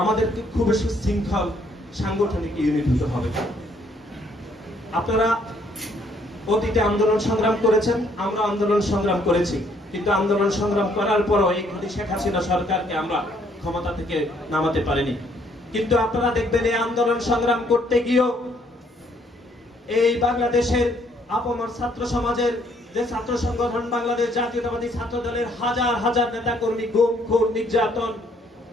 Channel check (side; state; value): both; normal; correlation 0.66